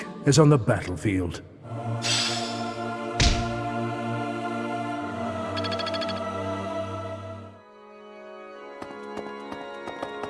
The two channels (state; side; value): identical; both; correlation 1.00